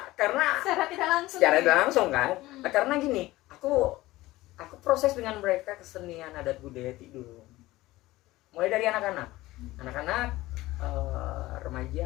Secara tidak langsung. secara tidak langsung kan. Karena gini, aku proses dengan mereka kesenian adat budaya Tidung. Mulai dari anak-anak,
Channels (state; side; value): quieter; right; 18.0 dB